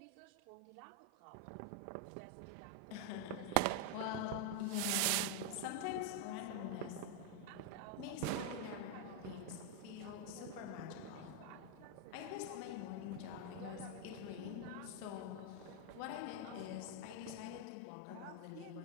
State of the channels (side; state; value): both; different; correlation 0.00